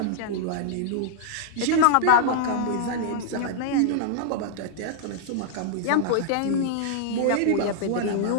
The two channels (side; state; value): both; different; correlation -0.01